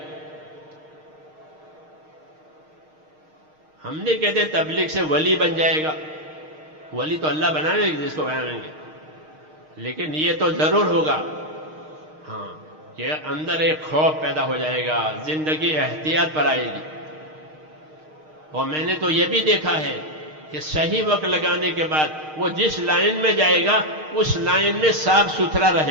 ہم نہیں کہتے تبلیغ سے ولی بن جائے گا، ولی تو اللہ بنائیں گے جس کو بنائیں گے، لیکن یہ تو ضرور ہوگا ہاں کہ اندر ایک خوف پیدا ہو جائے گا، زندگی احتیاط پر آئے گی۔ اور میں نے تو یہ بھی دیکھا ہے کہ صحیح وقت لگانے کے بعد وہ جس لائن میں جائے گا اس لائن میں صاف ستھرا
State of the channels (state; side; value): late; left; 6.5 ms